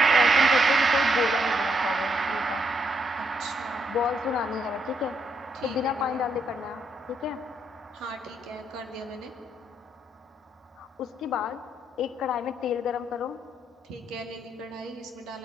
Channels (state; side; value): normal; both; correlation 0.76